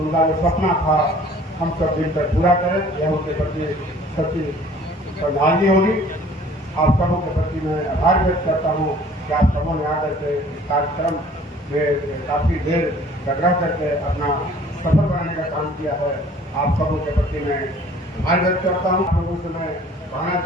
जो सपना था हम सब मिलकर पूरा करें, यह उनके प्रति सच्ची श्रद्धांजलि होगी। आप सबों के प्रति मैं आभार व्यक्त करता हूँ कि आप सबों ने आकर के इस कार्यक्रम में काफ़ी देर रह करके अपना सफल बनाने का काम किया है। आप सबों के प्रति मैं आभार व्यक्त करता हूँ। आप लोगों से मैं कहना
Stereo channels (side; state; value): both; normal; correlation 0.52